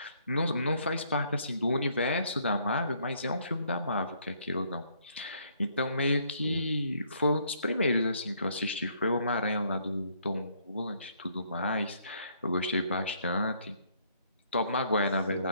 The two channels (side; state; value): both; inverted; correlation -0.67